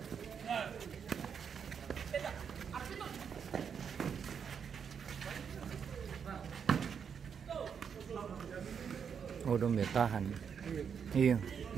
Oh, dong tahan. Iya,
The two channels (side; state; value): left; quieter; 7.1 dB